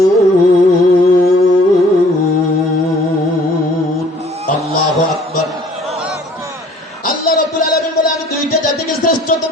লিয়াবুদুন। আল্লাহু আকবার। আল্লাহ রাব্বুল আলামিন বলে আমি দুইটা জাতিকে শ্রেষ্ঠত্ব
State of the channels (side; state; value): both; normal; correlation 0.56